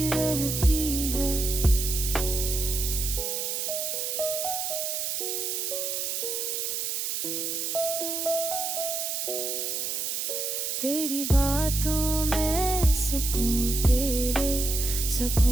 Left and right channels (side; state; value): right; noise; hiss, 1 dB below the sound